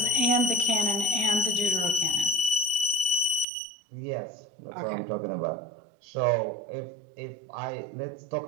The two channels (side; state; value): left; drops out; at 3.5 s